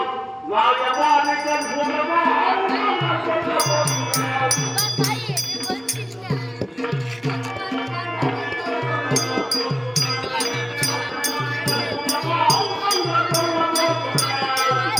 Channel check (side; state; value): both; identical; correlation 1.00